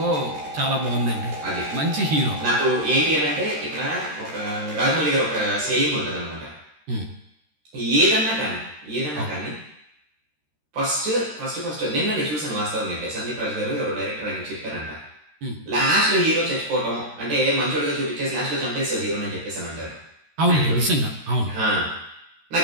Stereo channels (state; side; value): late; left; 13 ms